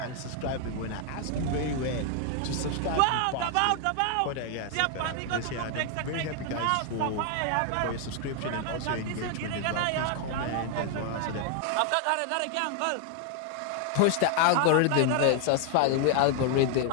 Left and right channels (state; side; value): different; both; correlation 0.00